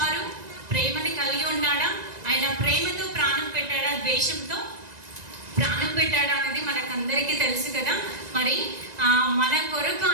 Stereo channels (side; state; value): left; late; 1.9 ms